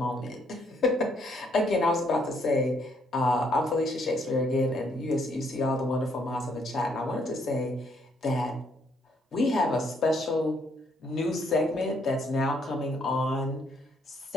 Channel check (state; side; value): normal; both; correlation 0.70